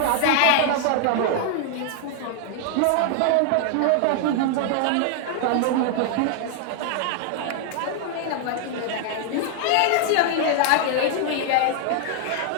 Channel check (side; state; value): both; different; correlation 0.00